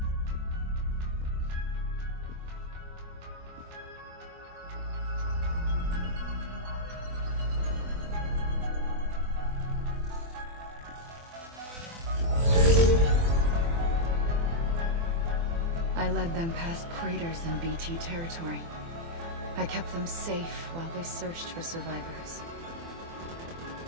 I led them past craters in BT territory. I kept them safe while they searched for survivors.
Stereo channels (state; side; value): late; left; 24 ms